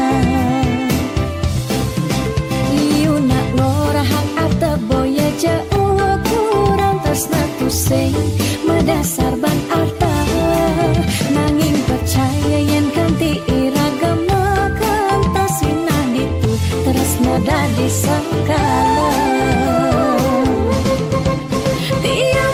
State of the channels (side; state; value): both; identical; correlation 1.00